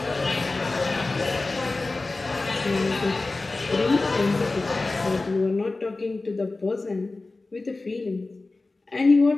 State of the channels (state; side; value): quieter; right; 3.4 dB